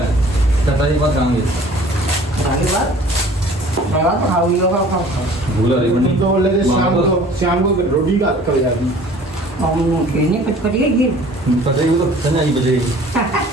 चटाई के बाद खाएंगे। खाने के बाद मैं बात खाऊंगी खाओ भूला रही तुम तो बोल रहे थे शाम को रोटी का कर जाती हम खेलने पटपटी है बचेगी तो संजय ही बचेगी।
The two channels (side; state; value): both; normal; correlation 0.50